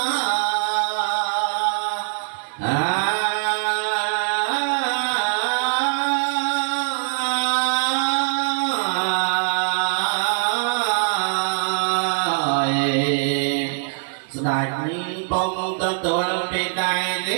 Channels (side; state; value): left; silent; digital silence